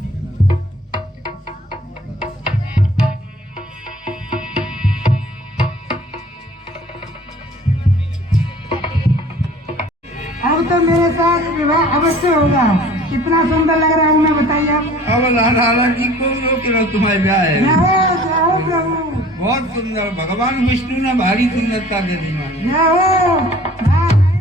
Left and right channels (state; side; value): normal; both; correlation 0.49